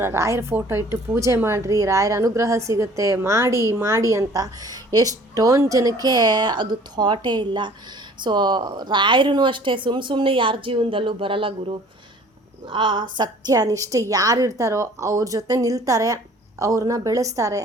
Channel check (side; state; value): both; normal; correlation 0.52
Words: ರಾಯರ ಫೋಟೋ ಇಟ್ಟು ಪೂಜೆ ಮಾಡಿರಿ, ರಾಯರ ಅನುಗ್ರಹ ಸಿಗುತ್ತೆ, ಮಾಡಿ ಅಂತ. ಎಷ್ಟೊಂದು ಜನಕ್ಕೆ ಅದು ಥಾಟೇ ಇಲ್ಲ. ಸೊ ರಾಯರೂ ಅಷ್ಟೇ, ಸುಮ್ಮನೆ ಯಾರ ಜೀವನದಲ್ಲೂ ಬರಲ್ಲ ಗುರು. ಆ ಸತ್ಯ ನಿಷ್ಠೆ ಯಾರು ಇರ್ತಾರೋ ಅವ್ರ ಜೊತೆ ನಿಲ್ತಾರೆ, ಅವ್ರನ್ನ ಬೆಳೆಸ್ತಾರೆ.